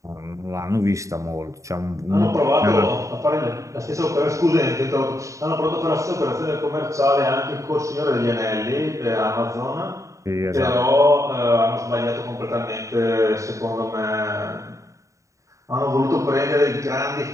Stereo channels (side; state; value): left; late; 0.15 ms